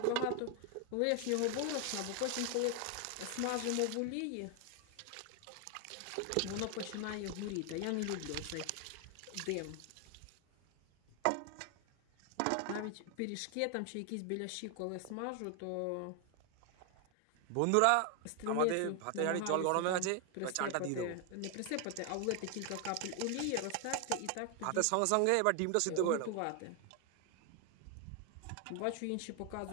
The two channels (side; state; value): both; different; correlation 0.00